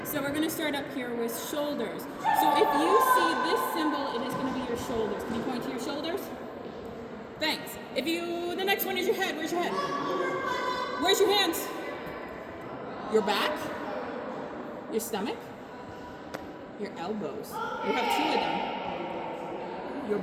So we're going to start up here with shoulders. So if you see this symbol, it is going to be your shoulders. Can you point to your shoulders? Thanks. The next one is your head. Where's your head? Where's your hands? Your back? Your stomach? Your elbows. You have two of them. Your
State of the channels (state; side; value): identical; both; correlation 1.00